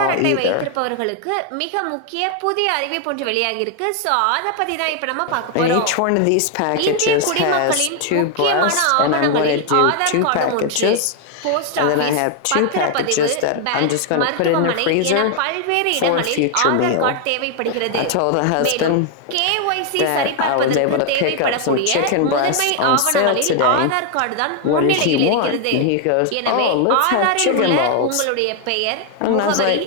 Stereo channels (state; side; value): different; both; correlation 0.00